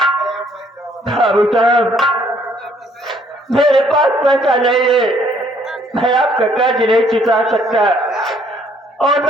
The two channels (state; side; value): normal; both; correlation 0.64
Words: बाबू साहब, मेरे पास पैसा नहीं है, मैं आपका कर्ज नहीं चुका सकता और